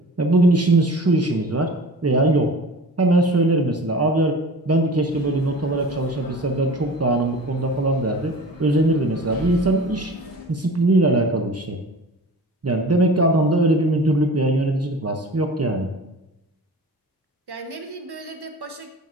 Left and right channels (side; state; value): both; normal; correlation 0.40